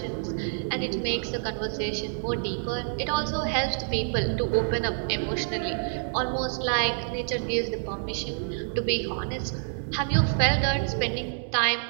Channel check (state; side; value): silent; left; 60 dB below the other